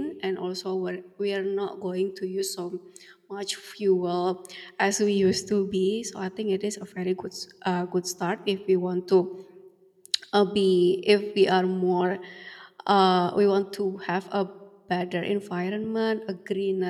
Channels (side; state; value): both; identical; correlation 1.00